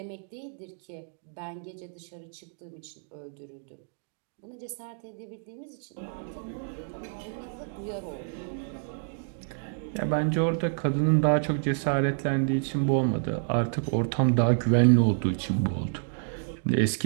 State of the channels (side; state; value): left; silent; digital silence